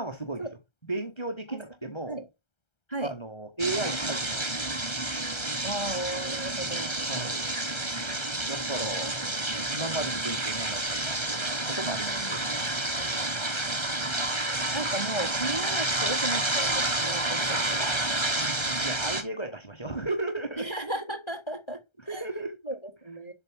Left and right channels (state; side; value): late; right; 1.3 ms